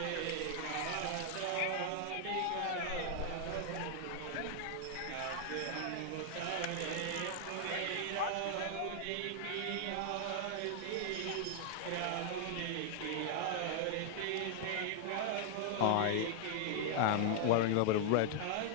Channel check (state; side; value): different; both; correlation 0.00